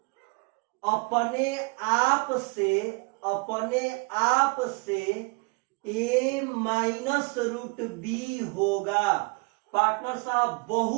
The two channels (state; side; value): quieter; left; 29.3 dB